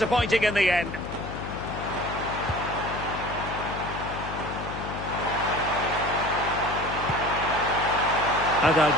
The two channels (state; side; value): noise; left; hum, 8 dB below the sound